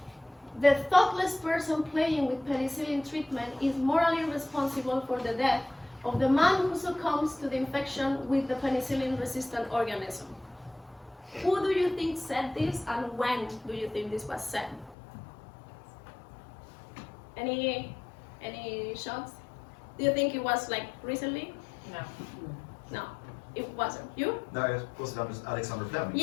The thoughtless person playing with penicillin treatment is morally responsible for the death of the man who succumbs to the infection with the penicillin-resistant organism. Who do you think said this, and when do you think this was said? Any shots? Do you think it was like recently? No. No, it wasn't. You? No, it was Alexander Fleming.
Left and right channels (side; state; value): right; drops out; at 15.0 s